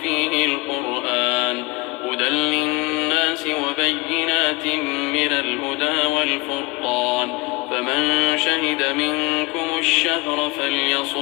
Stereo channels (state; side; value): quieter; right; 24.0 dB